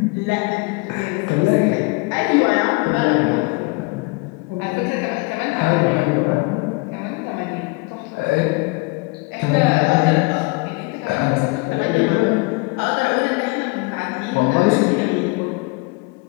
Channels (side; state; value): right; quieter; 26.7 dB